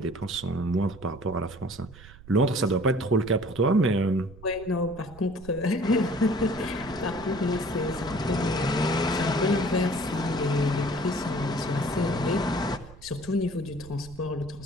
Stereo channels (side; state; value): right; noise; rumble, 19 dB below the sound